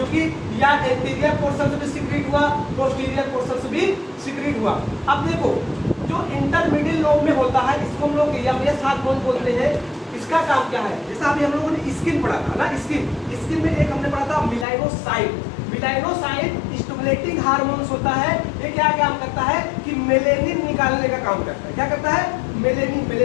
या एंटीरियर पोर्शन से भी सीक्रेट हुआ, पोस्टीरियर पोर्शन से भी सीक्रेट हुआ। अब देखो, जो इंटरमीडिएट लोब में होता है, इसको हम लोग यमयस हार्मोन बोलते हैं। इसका काम क्या है? जैसा अभी हम लोगों ने स्किन पढ़ा था ना, स्किन में एक हमने पढ़ा था मेलानोसाइट। मेलानोसाइट स्टिमुलेटिंग हार्मोन्स होता है। ये क्या काम करता है कि मेलेनिन निकालने का काम करता है। क्या करता है?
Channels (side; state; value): right; drops out; at 14.7 s